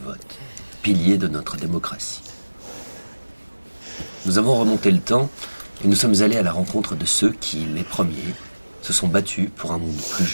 pilier de notre démocratie. Nous avons remonté le temps et nous sommes allés à la rencontre de ceux qui, les premiers, se sont battus pour un monde plus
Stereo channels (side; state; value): both; inverted; correlation -1.00